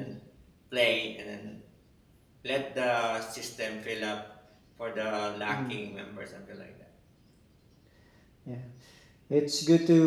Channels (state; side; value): identical; both; correlation 1.00